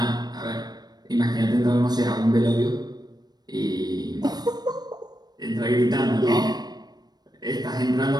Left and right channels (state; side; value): late; left; 0.19 ms